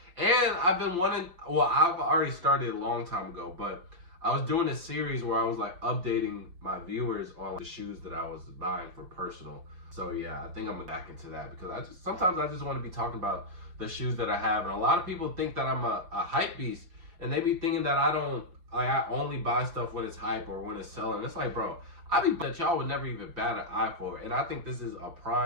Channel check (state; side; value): late; left; 5.8 ms